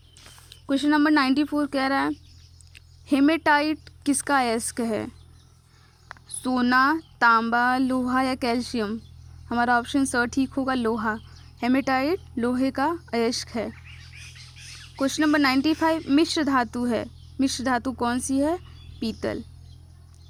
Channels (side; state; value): both; identical; correlation 1.00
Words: क्वेश्चन नंबर 94 कह रहा है, हेमेटाइट किसका अयस्क है? सोना, तांबा, लोहा या कैल्शियम। हमारा ऑप्शन स ठीक होगा, लोहा। हेमेटाइट लोहे का अयस्क है। क्वेश्चन नंबर 95, मिश्र धातु है। मिश्र धातु कौन सी है? पीतल।